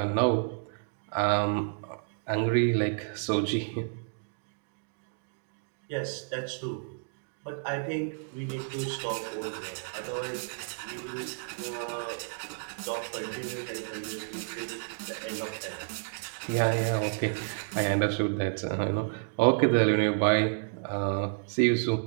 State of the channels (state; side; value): silent; left; digital silence